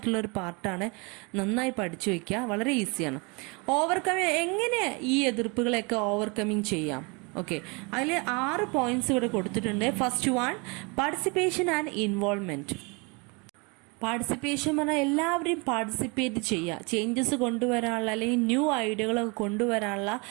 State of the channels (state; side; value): quieter; left; 29.7 dB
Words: ഒരു പാർട്ടാണ്. നന്നായി പഠിച്ചു വയ്ക്കുക, വളരെ ഈസിയാണ്. ഓവർകമ്മിങ് എങ്ങനെ ഈ എതിർപ്പുകളെയൊക്കെ ഓവർകമ്മിങ് ചെയ്യാം? ഓക്കെ, അതിൽ 6 പോയിന്റ്സ് ഇവിടെ കൊടുത്തിട്ടുണ്ട്. First one, participation and involvement. Participation പറഞ്ഞാൽ എല്ലാവരെയും പാർട്ടിസിപ്പേറ്റ് ചെയ്യുക, ചേഞ്ചസ് കൊണ്ടുവരാനുള്ള അല്ലെങ്കിൽ ന്യൂ ഐഡിയകളൊക്കെ കൊണ്ടുവരാനുള്ള